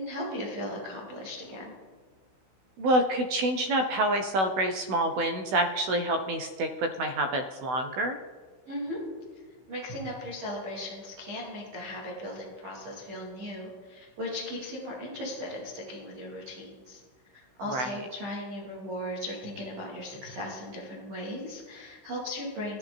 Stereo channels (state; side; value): late; left; 16 ms